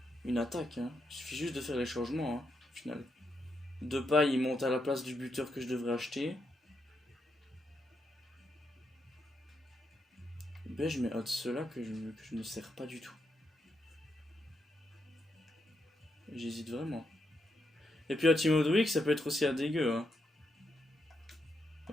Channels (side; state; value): both; normal; correlation 0.82